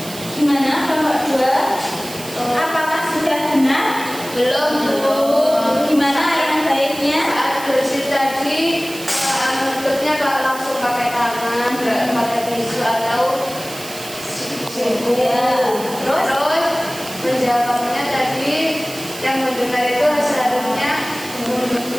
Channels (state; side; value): noise; right; hiss, 13 dB below the sound